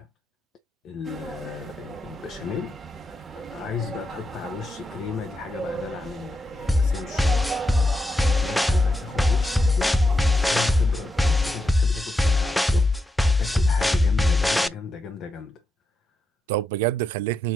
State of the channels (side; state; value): both; normal; correlation 0.84